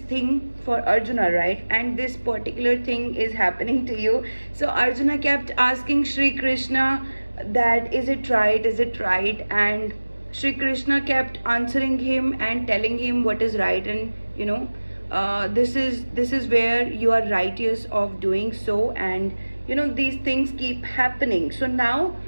for Arjuna, right? And this particular thing is happening to you. So Arjuna kept asking Shri Krishna that, is it right, is it right? And Shri Krishna kept answering him and telling him what is right, and this is where you are righteous of doing so. And these things keep happening. So now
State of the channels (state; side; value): inverted; both; correlation -1.00